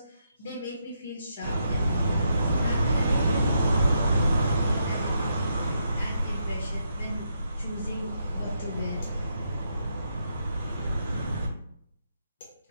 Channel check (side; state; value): both; inverted; correlation -0.79